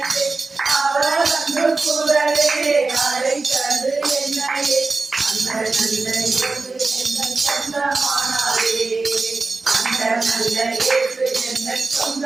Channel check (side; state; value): left; quieter; 3.8 dB